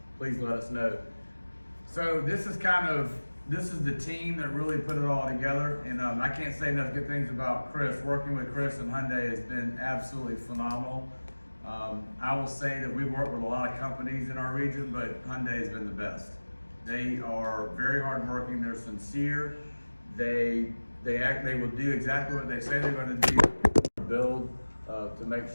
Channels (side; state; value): both; inverted; correlation -1.00